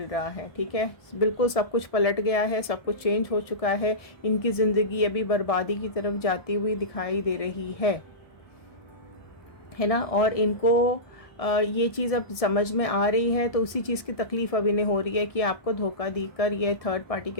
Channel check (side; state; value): right; late; 1.6 ms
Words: रहा है। ठीक है, बिल्कुल सब कुछ पलट गया है, सब कुछ चेंज हो चुका है। इनकी ज़िंदगी अभी बर्बादी की तरफ जाती हुई दिखाई दे रही है ना। और इनको ये चीज़ अब समझ में आ रही है, तो उसी चीज़ की तकलीफ़ अब इन्हें हो रही है कि आपको धोखा देकर ये थर्ड पार्टी